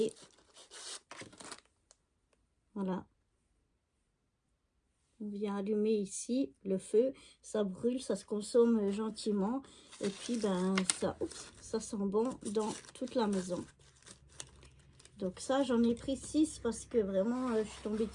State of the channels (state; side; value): identical; both; correlation 1.00